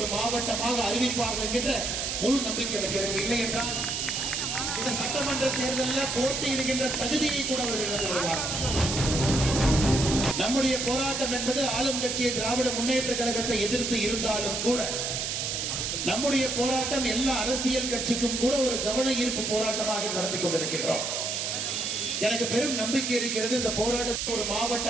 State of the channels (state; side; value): noise; right; hiss, 1 dB below the sound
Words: மாவட்டமாக அறிவிப்பார்கள் என்கின்ற முழு நம்பிக்கை இருக்கிறது. இல்லை என்றால் இந்த சட்டமன்ற தேர்தலில் போட்டியிடுகின்ற தகுதியை கூட அவர்கள் இழந்து விடுவார்கள். நம்முடைய போராட்டம் என்பது ஆளும் கட்சியை திராவிட முன்னேற்ற கழகத்தை எதிர்த்து இருந்தாலும் கூட நம்முடைய போராட்டம் எல்லா அரசியல் கட்சிக்கும் கூட ஒரு கவன ஈர்ப்பு போராட்டமாக நடத்தி கொண்டிருக்கின்றோம். எனக்கு பெரும் நம்பிக்கை இருக்கிறது. இந்த போராட்டத்தை ஒரு